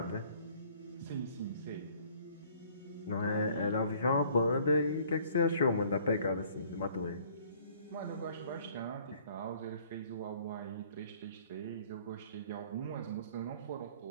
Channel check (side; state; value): both; inverted; correlation -0.57